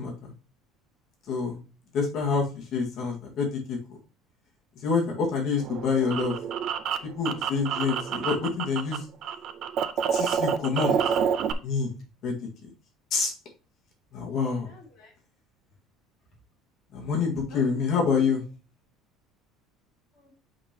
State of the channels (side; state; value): both; normal; correlation 0.44